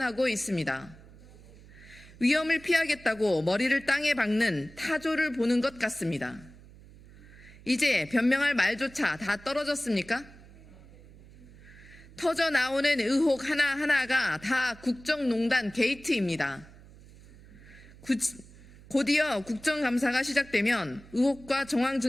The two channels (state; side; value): noise; right; hum, 21 dB below the sound